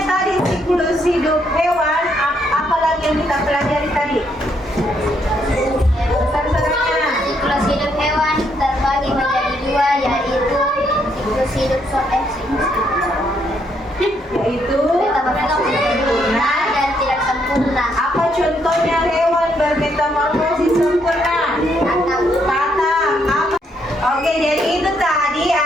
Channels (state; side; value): normal; both; correlation 0.73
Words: tadi siklus hidup hewan, apa lagi yang kita pelajari tadi? Besar-besarnya. Siklus hidup hewan terbagi menjadi 2, yaitu siklus hidup Yaitu sempurna dan tidak sempurna. apa contohnya hewan bermetamorfosis sempurna? Kata apa? Oke, jadi itu tadi